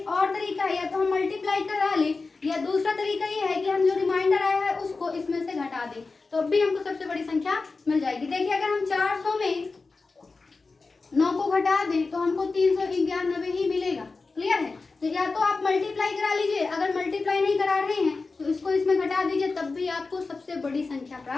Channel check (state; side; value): quieter; right; 4.0 dB